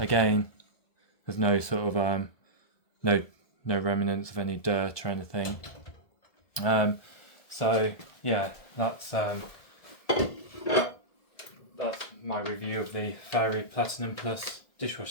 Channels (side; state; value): right; late; 1.7 ms